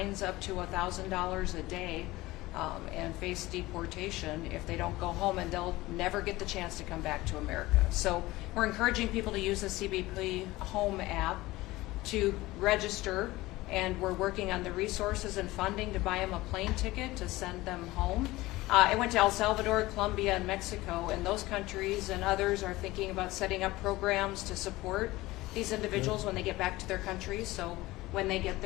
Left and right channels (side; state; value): right; quieter; 19.0 dB